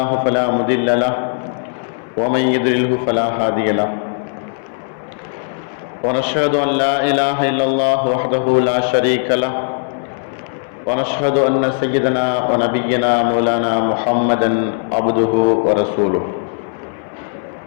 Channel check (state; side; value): silent; right; digital silence